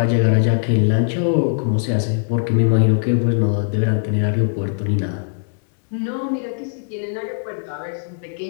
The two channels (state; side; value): silent; right; digital silence